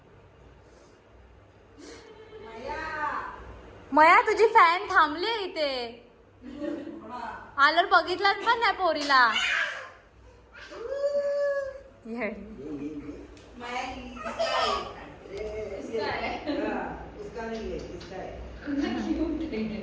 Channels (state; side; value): identical; both; correlation 1.00